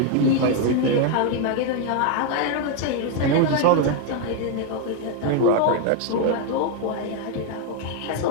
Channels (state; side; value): different; both; correlation 0.01